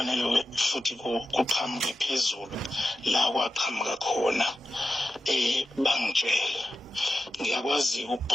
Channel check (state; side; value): normal; both; correlation 0.91